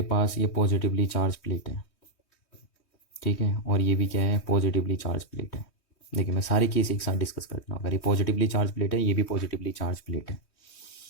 पास ये पॉजिटिवली चार्ज प्लेट है, ठीक है, और ये भी क्या है, पॉजिटिवली चार्ज प्लेट है। देखिए मैं सारे केस एक साथ डिस्कस कर रहा हूँ। अगर ये पॉजिटिवली चार्ज प्लेट है, ये भी पॉजिटिवली चार्ज प्लेट है,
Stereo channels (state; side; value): late; right; 3.2 ms